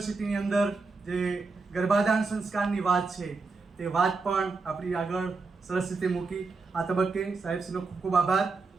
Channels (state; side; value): quieter; left; 4.1 dB